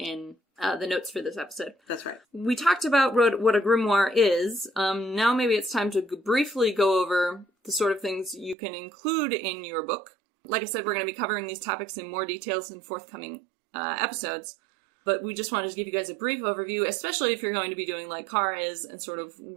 the notes for this episode. That's right. We talked about what a grimoire is. Now maybe it's time to briefly go over the sort of things you can include in your book. Like I said, we're going to be covering these topics in more details in forthcoming episodes. But we just wanted to give you guys a brief overview, especially if you're going to be doing like Cara is and sort of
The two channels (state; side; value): drops out; left; at 8.6 s